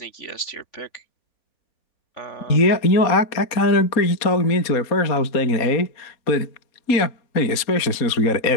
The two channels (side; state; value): right; late; 4.2 ms